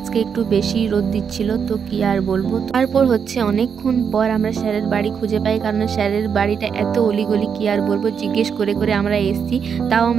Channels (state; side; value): quieter; left; 6.9 dB